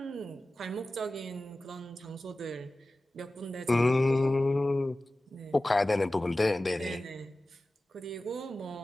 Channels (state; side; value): normal; both; correlation 0.96